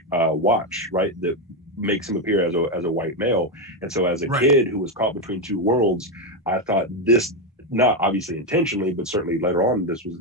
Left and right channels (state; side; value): normal; both; correlation 0.07